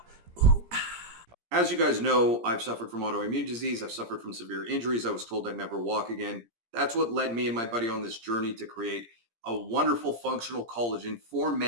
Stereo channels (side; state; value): left; late; 17 ms